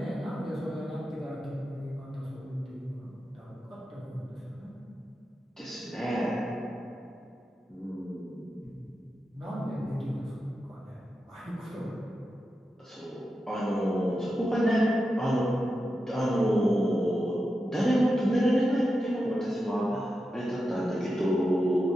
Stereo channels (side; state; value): both; normal; correlation 0.89